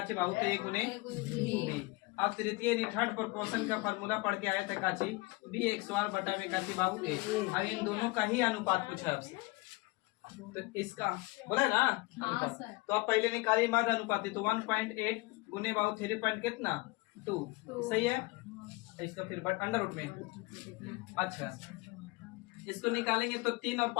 बाहु तो 1 गुने बी। अब तृतीय थर्ड प्रोपोर्शन का फार्मूला पढ़ के आए थे काची बी x² बटा में काची बाबू ए। अब इन दोनों का ही अनुपात पूछा है आपसे, तो इसका बोला है ना अनुपात। तो आप पहले निकालिए मध्य अनुपाती, तो 1.8 गुने बाबू 3 पॉइंट कितना 2 सही है। इसका फिर अंडर रूट में। अच्छा, इसको निकालेंगे तो 3 और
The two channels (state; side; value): quieter; right; 23.6 dB